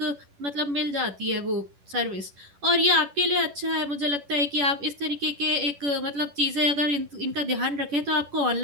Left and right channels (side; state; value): left; late; 11 ms